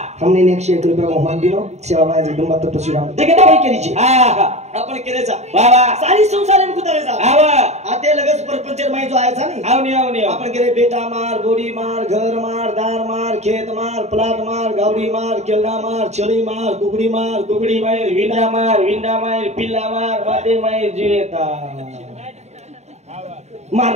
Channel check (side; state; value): left; late; 0.32 ms